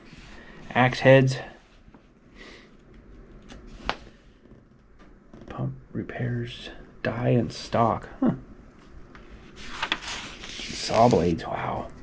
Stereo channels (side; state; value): both; identical; correlation 1.00